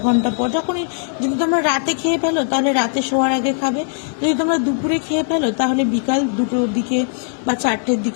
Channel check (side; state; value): right; silent; digital silence